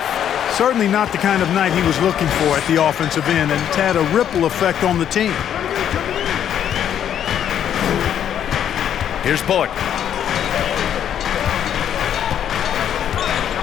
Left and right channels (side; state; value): right; quieter; 9.6 dB